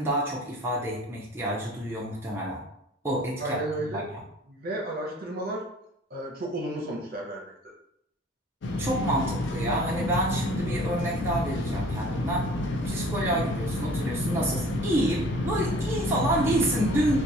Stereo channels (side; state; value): both; normal; correlation 0.49